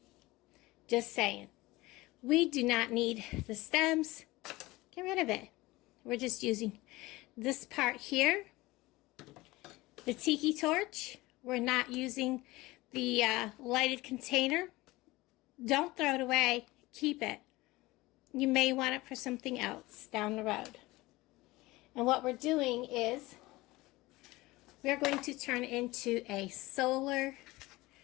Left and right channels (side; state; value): right; quieter; 20.2 dB